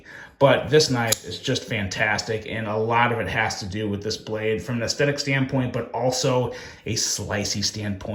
But this knife is just fantastic, and a lot of it has to do with this blade from an aesthetic standpoint, but also a slicey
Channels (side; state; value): both; identical; correlation 1.00